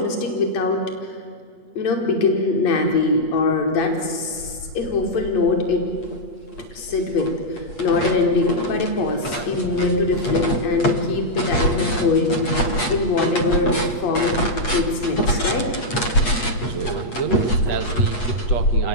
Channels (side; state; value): right; late; 8.4 ms